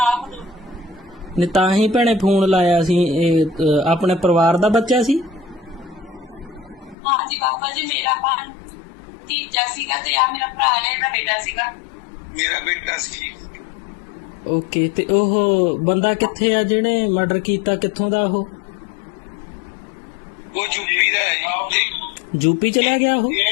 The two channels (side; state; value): right; drops out; at 7.0 s